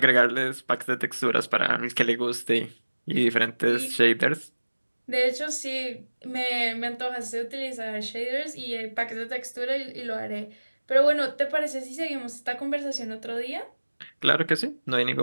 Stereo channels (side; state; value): both; inverted; correlation -1.00